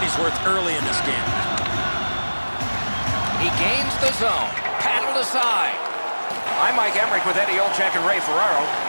worth early in this game. He gains the zone. Paddled aside. I'm Mike Emmerich with Eddie Olczyk and Ray Ferraro.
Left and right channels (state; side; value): inverted; both; correlation -1.00